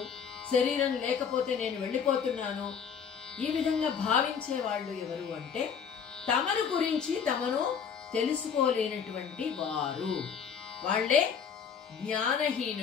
శరీరం లేకపోతే నేను వెళ్ళిపోతున్నాను, ఈ విధంగా భావించే వాళ్ళు ఎవరు అంటే తమను గురించి తమను తెలుసుకోలేనటువంటి వారు, వాళ్లే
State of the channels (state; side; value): quieter; right; 7.0 dB